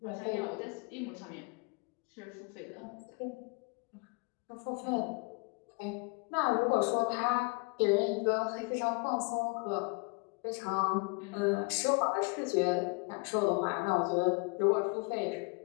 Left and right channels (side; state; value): right; quieter; 32.0 dB